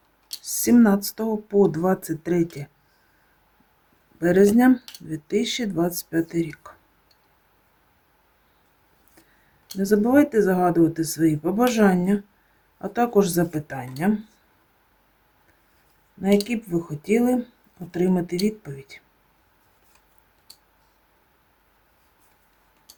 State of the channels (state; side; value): identical; both; correlation 1.00